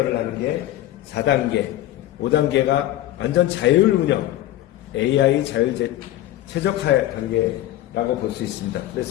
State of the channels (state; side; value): quieter; right; 14.2 dB